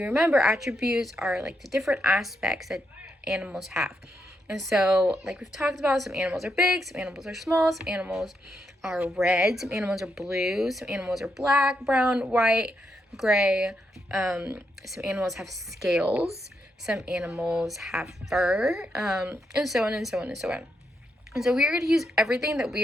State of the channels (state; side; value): normal; both; correlation 0.81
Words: remember, attributes are like the different aspects that animals have. And so, like we've talked about, some animals are big, some animals are small, some animals are red, some animals are blue, some animals are black, brown, white, gray. Some animals have scales, some animals have fur, and so on and so on and so on. And so we are going to use everything that we